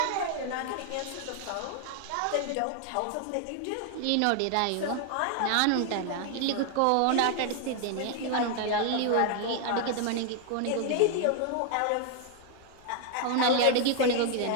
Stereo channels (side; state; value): both; different; correlation 0.00